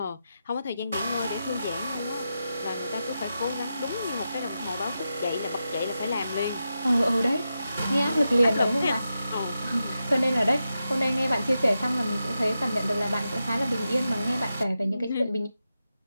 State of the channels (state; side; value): inverted; both; correlation -0.89